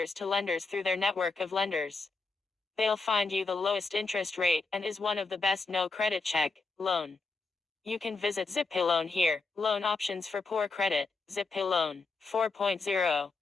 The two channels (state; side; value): quieter; right; 3.9 dB